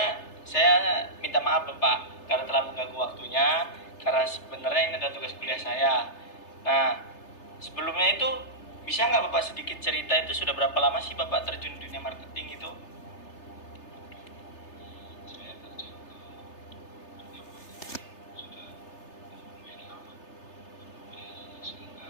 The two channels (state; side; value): late; right; 3.3 ms